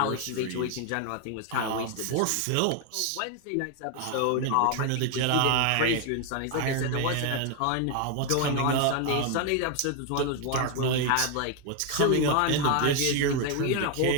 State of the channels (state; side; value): different; both; correlation 0.01